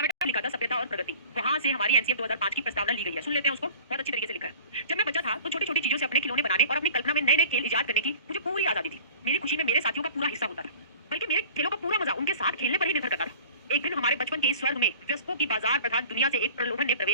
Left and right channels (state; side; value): inverted; both; correlation -0.44